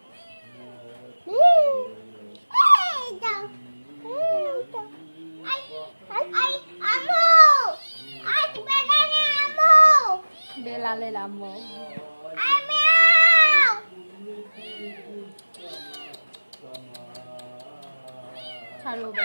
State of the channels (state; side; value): inverted; both; correlation -1.00